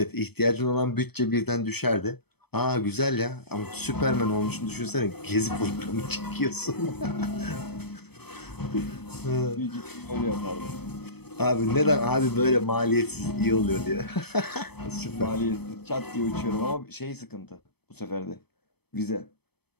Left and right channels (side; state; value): right; late; 0.97 ms